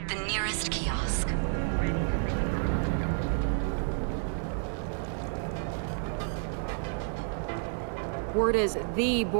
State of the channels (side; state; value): left; silent; 56 dB below the other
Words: The nearest kiosk. Word is the